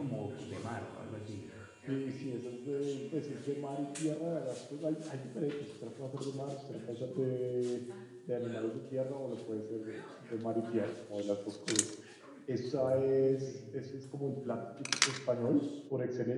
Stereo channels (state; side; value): identical; both; correlation 1.00